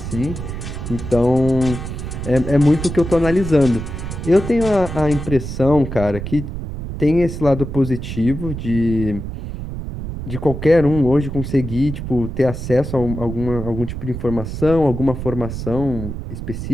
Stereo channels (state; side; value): noise; right; rumble, 7 dB below the sound